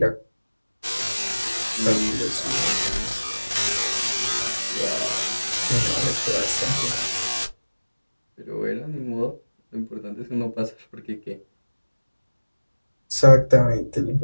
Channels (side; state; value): both; inverted; correlation -1.00